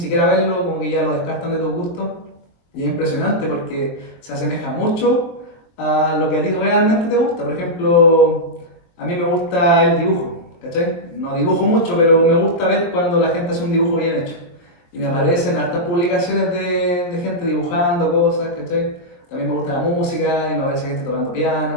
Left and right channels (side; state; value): right; late; 23 ms